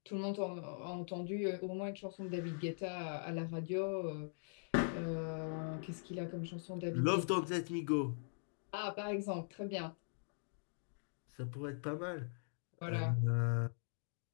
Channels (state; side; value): silent; right; digital silence